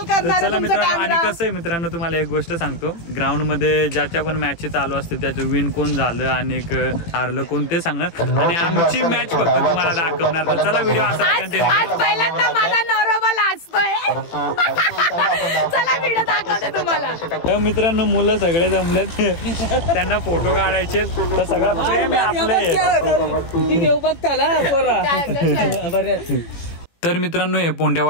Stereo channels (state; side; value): late; right; 18 ms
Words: करणार. चला मित्रांनो, आणि कसं आहे मित्रांनो तुम्हाला एक गोष्ट सांगतो, ग्राउंड मध्ये ज्याच्या पण मॅच चालू असते त्याचं विन कोण झालं आणि हारलं कोण ते सांगणार. आणि आमची मॅच फक्त तुम्हाला दाखवणार. तर चला व्हिडिओ असा कंटिन्यू. आज पहिल्यांदा माझा नवरोबा लाजतोय. चला व्हिडिओ दाखवते तुम्हाला. तर मित्रांनो मुलं सगळे जमलेत, त्यांना फोटो काढायचे. तर सगळं प्रेम आहे आपलं. तर मित्रांनो हे